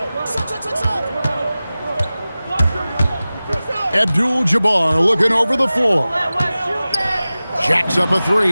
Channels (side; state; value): both; inverted; correlation -0.97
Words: Abdul-Jabbar looking over the floor. Jacks up a